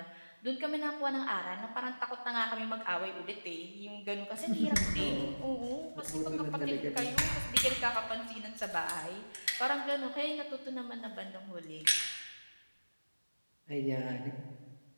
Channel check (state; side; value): inverted; both; correlation -1.00